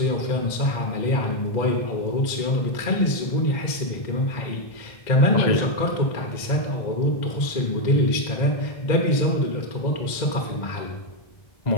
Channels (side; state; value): right; late; 2.0 ms